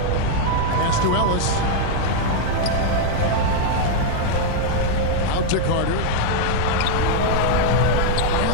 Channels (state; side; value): different; both; correlation -0.01